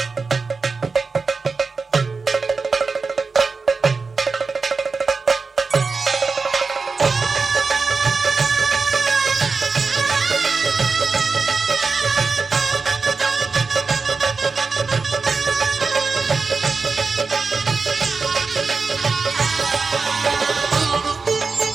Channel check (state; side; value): quieter; left; 4.5 dB